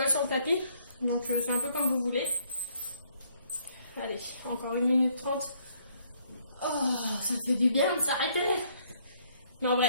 sur le tapis. Donc, c'est un peu comme vous voulez. Allez, encore 1 minute 30. Oh, ça fait du bien de s'arrêter. Mais en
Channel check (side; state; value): both; inverted; correlation -0.66